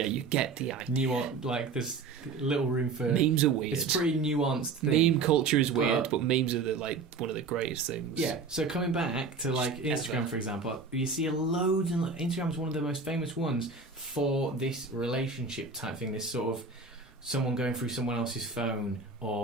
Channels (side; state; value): left; quieter; 4.4 dB